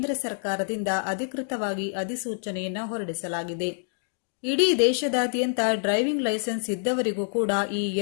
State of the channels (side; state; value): right; silent; digital silence